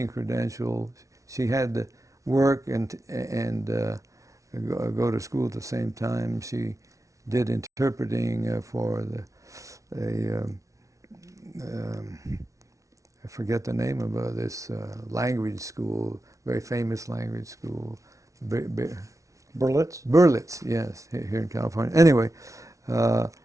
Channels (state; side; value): late; left; 0.15 ms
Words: credential, she had to work and go to school at the same time. She did interpreting for I forget the name of this language school, very famous language school. Berlitz? Berlitz, yes, here in California. Anyway, so